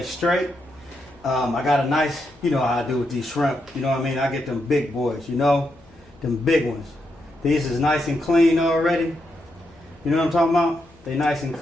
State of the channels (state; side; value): noise; left; hum, 28 dB below the sound